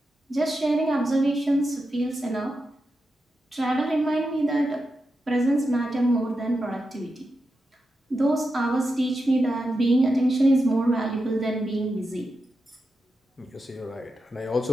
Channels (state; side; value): normal; both; correlation 0.89